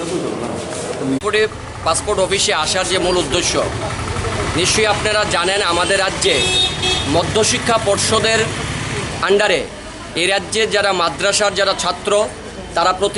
পাসপোর্ট অফিসে আসার যে মূল উদ্দেশ্য নিশ্চয়ই আপনারা জানেন, আমাদের রাজ্যে মধ্যশিক্ষা পর্ষদের আন্ডারে এই রাজ্যের যারা মাদ্রাসার যারা ছাত্র তারা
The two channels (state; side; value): identical; both; correlation 1.00